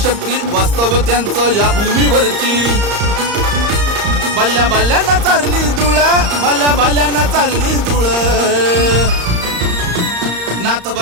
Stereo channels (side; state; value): left; late; 34 ms